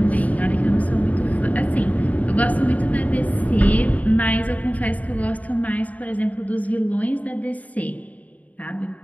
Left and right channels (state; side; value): late; right; 0.072 ms